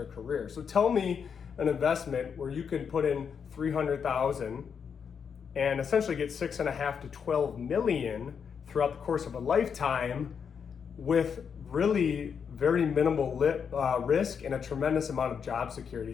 career. So tell me an investment where you can put in $300,000 and essentially get $6.5 to $12 million throughout the course of a lifetime with really very minimal risk and a tremendous amount of job security.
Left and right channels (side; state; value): right; quieter; 6.8 dB